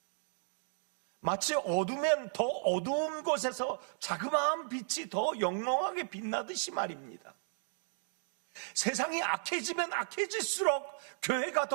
마치 어두면 더 어두운 곳에서 자그마한 빛이 더 영롱하게 빛나듯이 말입니다. 세상이 악해지면 악해질수록 교회가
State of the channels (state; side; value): silent; left; digital silence